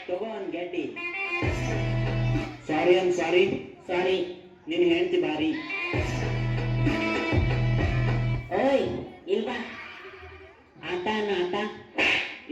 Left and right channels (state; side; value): identical; both; correlation 1.00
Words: ತಗೋ ಅನ್ ಗೆಡ್ಡಿ ಸಾರಿ ಅನ್ ಸಾರಿ ಸಾರಿ ನಿನ್ ಹೆಂಡತಿ ಬಾರಿ ಓಯ್ ಇಲ್ವಾ ಆಟ ಅನ್ನ ಆಟ